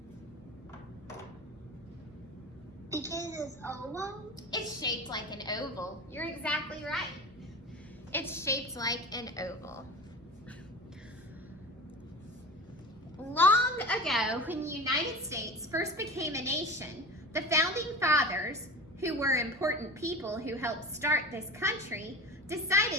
Because it's oval? It's shaped like an oval. You're exactly right. It's shaped like an oval. Long ago, when the United States first became a nation, the founding fathers, who were important people who helped start this country,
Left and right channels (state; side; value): normal; both; correlation 0.33